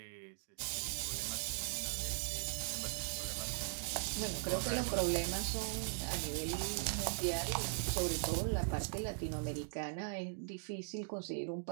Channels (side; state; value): left; silent; digital silence